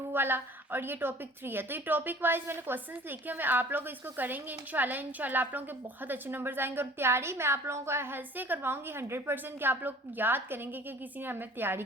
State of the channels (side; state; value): both; normal; correlation 0.48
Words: वाला, और ये टॉपिक 3 है। तो ये टॉपिक वाइज मैंने क्वेश्चंस लिखे हैं। मैं आप लोग इसको करेंगे इंशाल्लाह आप लोगों के बहुत अच्छे नंबर्स आएंगे। और तैयारी मैं आप लोगों को ऐसे करवाऊंगी 100% कि आप लोग याद करेंगे कि किसी ने हमें तैयारी